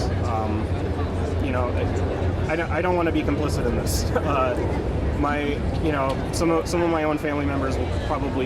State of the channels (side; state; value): both; identical; correlation 1.00